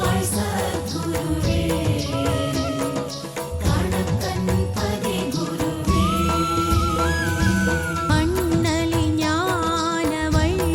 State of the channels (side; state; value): both; identical; correlation 1.00